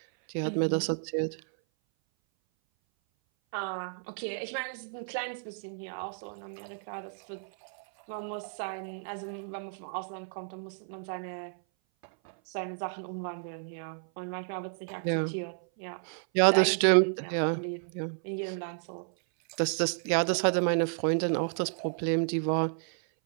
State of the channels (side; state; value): left; silent; 57 dB below the other